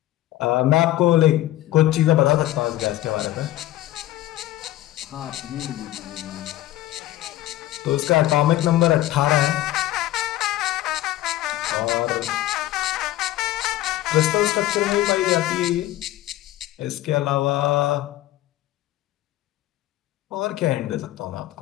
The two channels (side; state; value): right; quieter; 15.0 dB